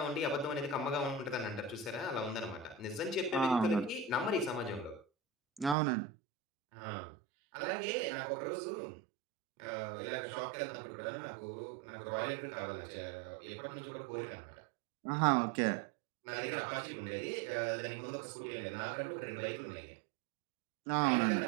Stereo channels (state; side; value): drops out; left; at 5.8 s